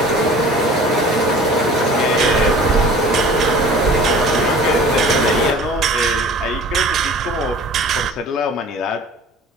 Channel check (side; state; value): both; normal; correlation 0.44